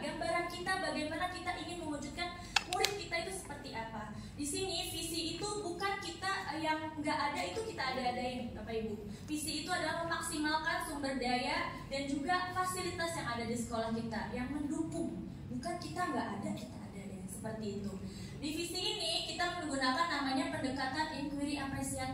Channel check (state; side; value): identical; both; correlation 1.00